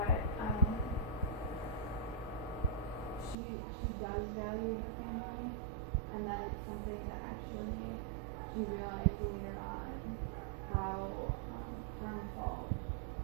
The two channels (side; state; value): left; drops out; at 3.4 s